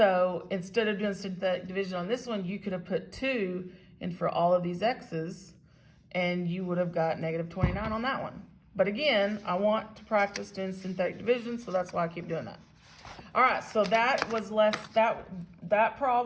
instead of doing synthetic division on this one, you could have put 2 in for all of these x's, and you would have got -29 on that one. But again, I want to practice doing synthetic division, so that's why I keep doing that. All right, so that was that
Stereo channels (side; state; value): both; identical; correlation 1.00